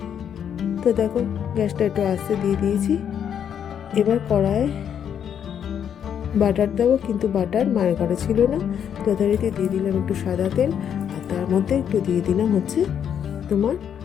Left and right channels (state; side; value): quieter; right; 8.6 dB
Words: তো দেখো গ্যাসটা একটু আস্তে দিয়ে দিয়েছি। এবার কড়ায় বাটার দেবো, কিন্তু বাটার মায়ের ঘরে ছিল না, যথারীতি দিয়ে দিলাম একটু সাদা তেল, আর তার মধ্যে একটু দিয়ে দিলাম হচ্ছে তোমার